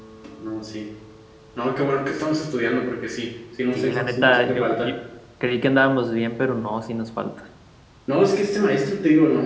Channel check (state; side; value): identical; both; correlation 1.00